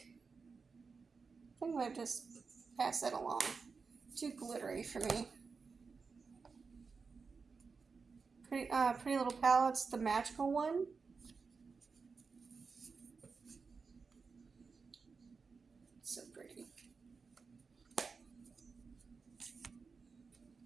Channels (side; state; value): left; quieter; 4.9 dB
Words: think I'm gonna just pass that along. Too glittery for me. Pretty Little Palettes, the magical one. So pretty.